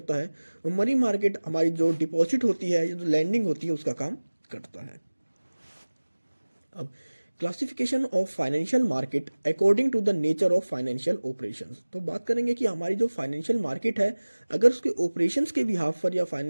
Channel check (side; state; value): both; inverted; correlation -1.00